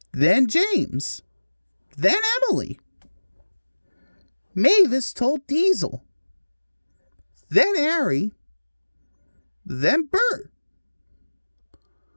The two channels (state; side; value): inverted; both; correlation -1.00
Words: then James, then Emily. Mavis told Diesel, then Harry, then Bert.